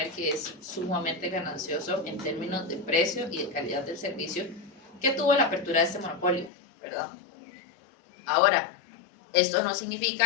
que es sumamente ganancioso en términos de precio y de calidad del servicio que tuvo la apertura de este monopolio, ¿verdad? Ahora, esto no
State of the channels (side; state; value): right; drops out; at 6.5 s